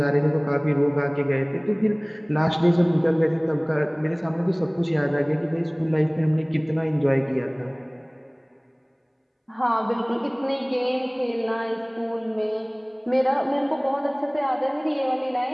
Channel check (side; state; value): both; identical; correlation 1.00